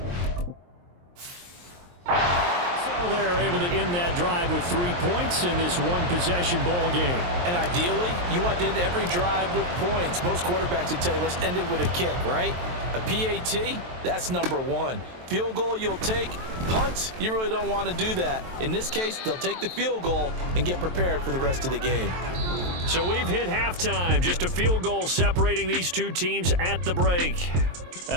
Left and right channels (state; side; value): late; left; 23 ms